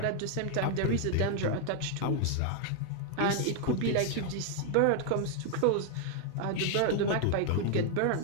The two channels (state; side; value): different; both; correlation 0.00